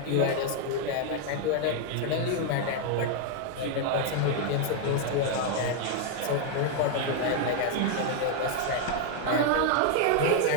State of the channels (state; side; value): different; both; correlation 0.00